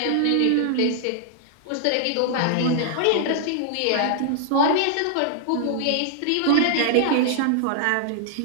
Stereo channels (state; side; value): different; both; correlation -0.01